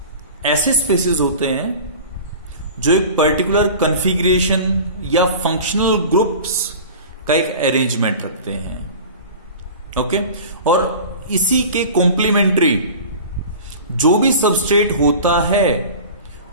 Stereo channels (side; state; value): both; inverted; correlation -0.37